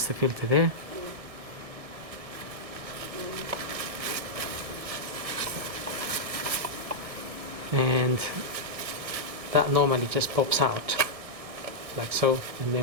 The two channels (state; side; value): late; left; 1.6 ms